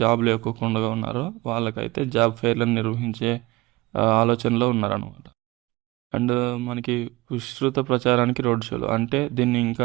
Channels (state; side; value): quieter; left; 21.3 dB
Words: జాబ్ లేకోకుండా ఉన్నారో వాళ్ళకైతే జాబ్ ఫెయిర్లను నిర్వహించే ఆలోచనలో ఉన్నారనమాట. అండ్ మనకి విస్తృత ప్రచారానికి రోడ్ షోలు అంటే దీన్ని